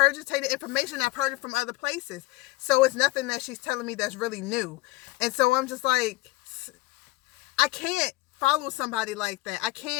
information. I've heard it from other places. So it's nothing that she's telling me that's really new. And so I'm just like, I can't follow somebody like that. I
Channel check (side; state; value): right; quieter; 20.7 dB